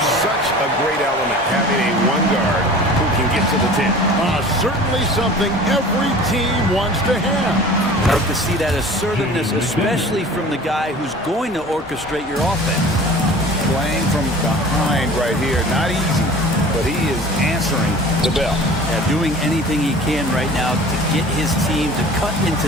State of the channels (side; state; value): both; normal; correlation 0.42